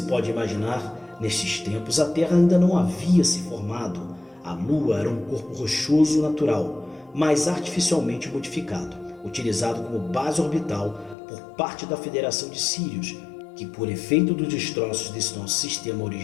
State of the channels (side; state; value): right; drops out; at 11.2 s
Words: pode imaginar, nestes tempos a Terra ainda não havia se formado. A Lua era um corpo rochoso natural, mas artificialmente modificado, utilizado como base orbital por parte da Federação de Sirius, que por efeito dos destroços desse nosso sistema